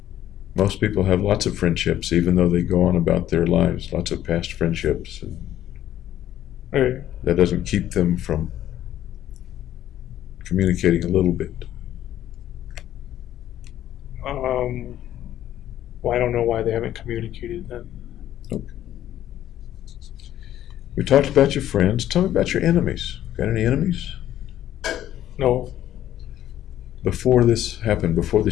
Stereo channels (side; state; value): right; quieter; 12.2 dB